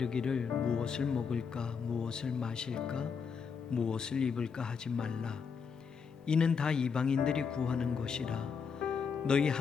무엇을 먹을까 무엇을 마실까 무엇을 입을까 하지 말라. 이는 다 이방인들이 구하는 것이라. 너희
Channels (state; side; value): quieter; right; 6.0 dB